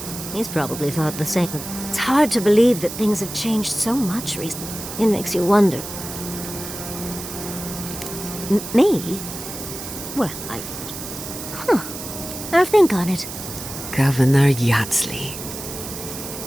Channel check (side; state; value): right; noise; hiss, 9 dB below the sound